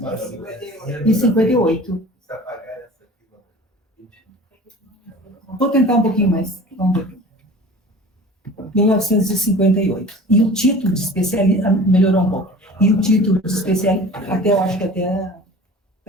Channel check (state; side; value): normal; both; correlation 0.41